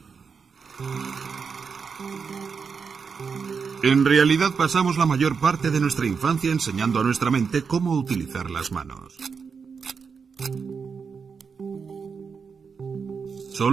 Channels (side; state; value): left; quieter; 5.8 dB